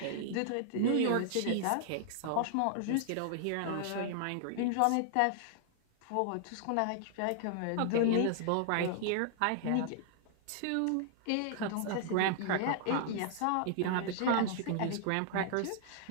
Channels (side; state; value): both; different; correlation -0.01